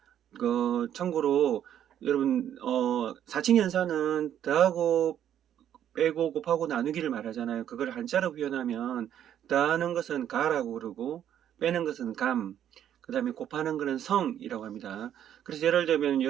참고로, 여러분, 사칙연산은 더하고 빼고 곱하고 나누기를 말하잖아요. 그걸 한자로 표현하면 더하는 것은 가라고 그러고 빼는 것은 감, 그 다음에 곱하는 것은 성이라고 합니다. 그래서 예를 들면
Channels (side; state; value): left; quieter; 10.3 dB